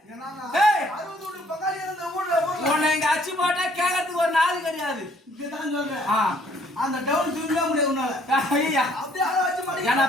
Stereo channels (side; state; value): both; normal; correlation 0.62